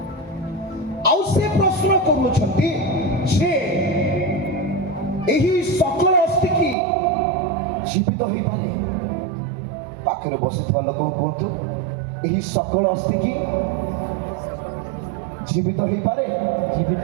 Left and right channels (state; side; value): drops out; left; at 6.8 s